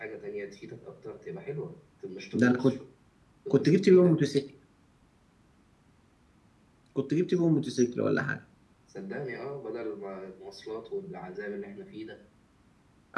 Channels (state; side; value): identical; both; correlation 1.00